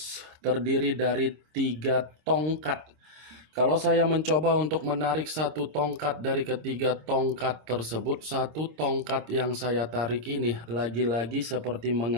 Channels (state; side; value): late; left; 26 ms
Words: terdiri dari 3 tongkat. Kalau saya mencoba untuk menarik 1 tongkat dari ketiga tongkat tersebut, 1 tongkat yang saya tarik ini lagi-lagi seperti